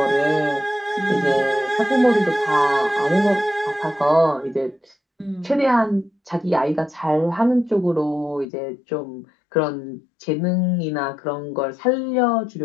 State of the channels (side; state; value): right; drops out; at 8.5 s